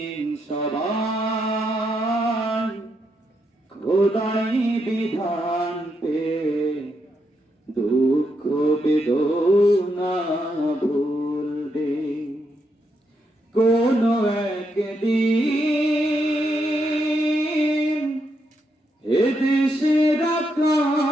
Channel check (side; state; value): both; normal; correlation 0.80